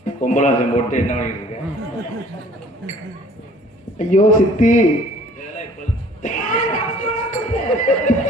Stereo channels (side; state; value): both; normal; correlation 0.53